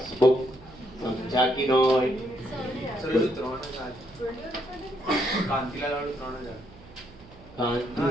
समझा कि नहीं?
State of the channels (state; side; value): noise; right; hum, 21 dB below the sound